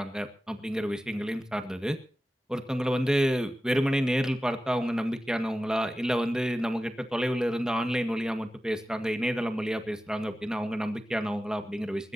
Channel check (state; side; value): normal; both; correlation 0.94